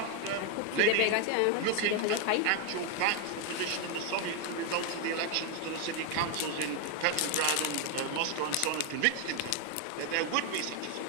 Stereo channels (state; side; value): different; both; correlation 0.01